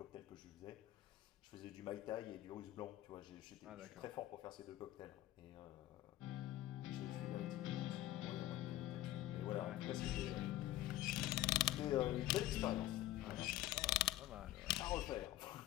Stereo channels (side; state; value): right; quieter; 15.0 dB